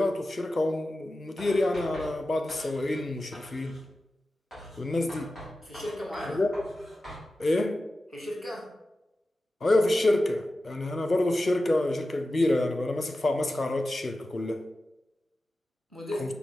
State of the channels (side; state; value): both; normal; correlation 0.94